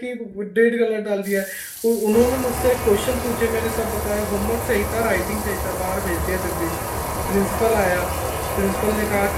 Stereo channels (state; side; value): identical; both; correlation 1.00